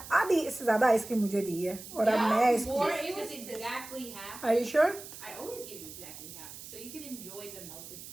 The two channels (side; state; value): right; noise; hiss, 13 dB below the sound